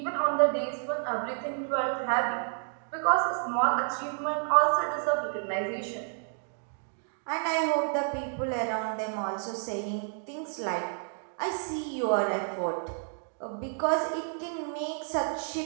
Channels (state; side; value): silent; left; 58 dB below the other